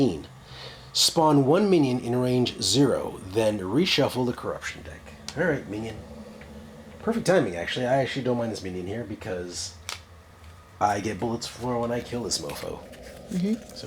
Spawn 1 minion in range 0, then reshuffle the corruption deck. All right, minion. Perfect timing, actually. I actually don't mind this minion here because I get bullets for when I kill this mofo.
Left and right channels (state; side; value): identical; both; correlation 1.00